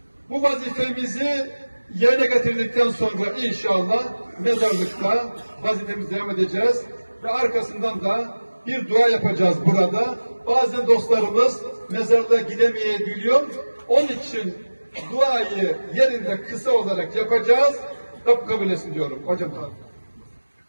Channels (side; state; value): both; inverted; correlation -1.00